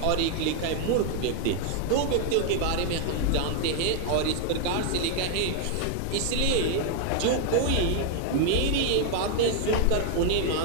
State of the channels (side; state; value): both; different; correlation 0.00